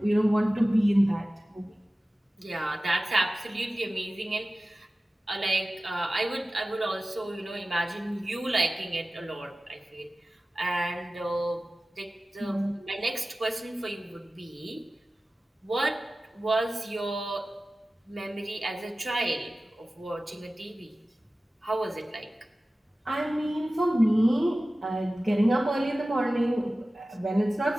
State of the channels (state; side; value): normal; both; correlation 0.96